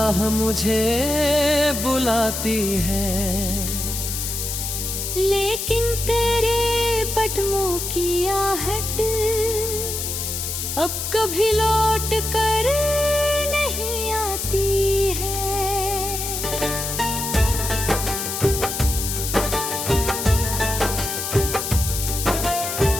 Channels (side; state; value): left; noise; hiss, 4 dB below the sound